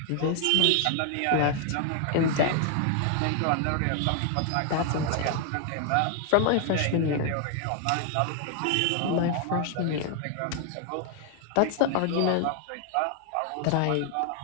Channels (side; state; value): both; different; correlation 0.00